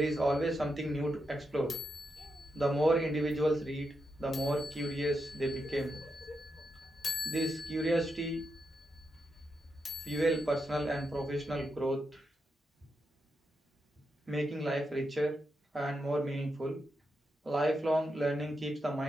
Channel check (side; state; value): both; normal; correlation 0.85